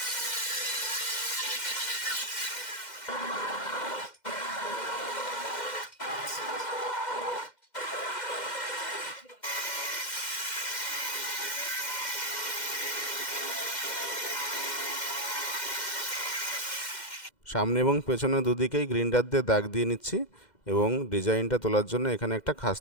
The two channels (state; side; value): late; right; 2.1 ms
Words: সামনে এবং পেছনে দুদিকেই গ্রিন্ডার দিয়ে দাগ দিয়ে নিচ্ছি, এবং ডিজাইনটা তোলার জন্য এখানে একটা খাঁজ